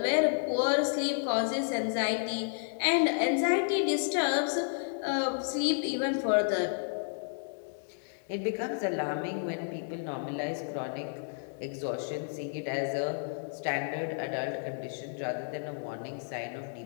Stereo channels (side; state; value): right; silent; digital silence